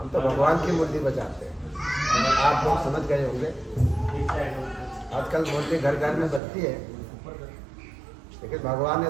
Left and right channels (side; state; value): left; drops out; at 6.4 s